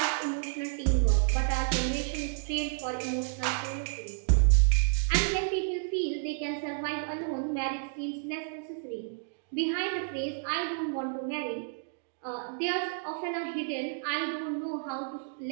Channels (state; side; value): silent; left; digital silence